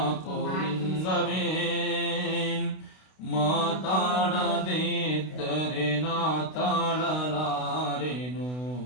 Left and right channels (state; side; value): late; right; 32 ms